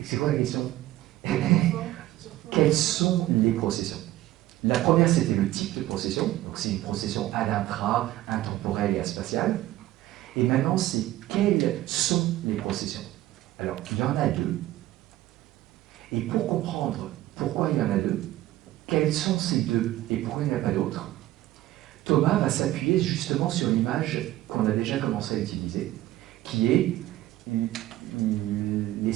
c'est quoi la question? Quelles sont les processions? La première, c'était le type de procession. Donc, c'est une procession ad intra, intemporelle et aspatiale. Et maintenant, c'est quelles sont les processions? Alors, il y en a deux. Et pour comprendre pourquoi il y en a deux, quels sont ces deux et pourquoi il n'y en a pas d'autres, Thomas va s'appuyer justement sur l'image qu'on a déjà commencé à utiliser, qui est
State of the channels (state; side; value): quieter; left; 15.4 dB